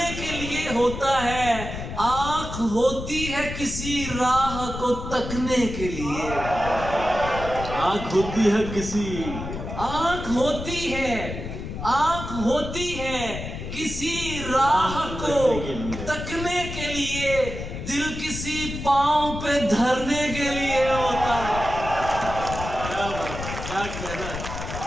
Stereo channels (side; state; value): left; noise; rumble, 7 dB below the sound